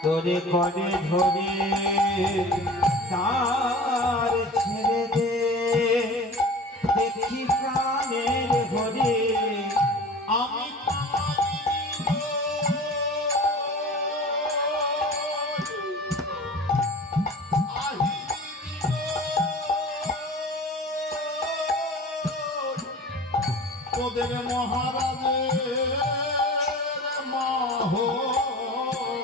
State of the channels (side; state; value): both; normal; correlation 0.38